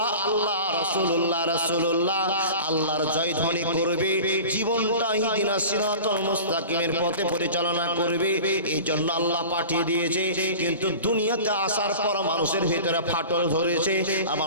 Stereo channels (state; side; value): inverted; both; correlation -0.37